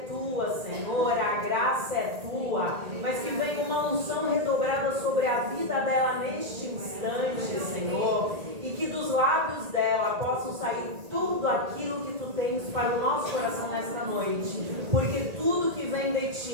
Tua, Senhor, a graça é Tua, mas que venha uma unção redobrada sobre a vida dela neste instante, Senhor, e que dos lábios dela possam sair tudo aquilo que Tu tens para o nosso coração nesta noite, porque tudo que vem de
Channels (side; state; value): left; late; 1.8 ms